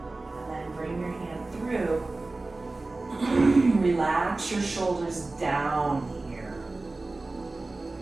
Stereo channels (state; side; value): quieter; left; 3.2 dB